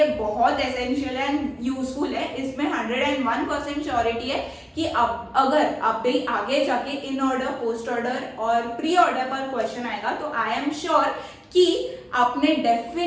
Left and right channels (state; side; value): identical; both; correlation 1.00